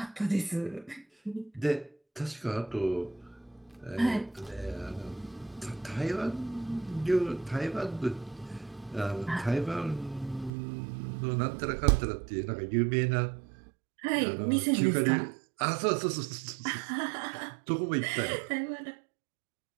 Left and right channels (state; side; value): drops out; left; at 10.5 s